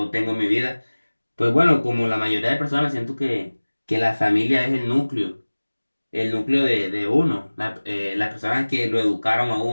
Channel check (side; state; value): both; inverted; correlation -1.00